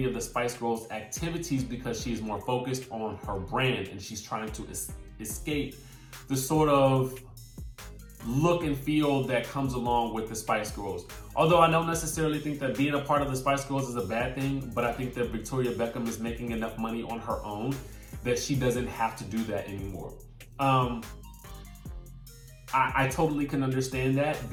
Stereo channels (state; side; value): identical; both; correlation 1.00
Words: of the Spice Girls activities because she is more focused on her brand, and she's trying to escape the sort of look and feel that comes along with the Spice Girls. Although I don't necessarily think that being a part of the Spice Girls is a bad thing, but I think that Victoria Beckham is making enough money on her own that she doesn't have to do that anymore. I totally can understand that,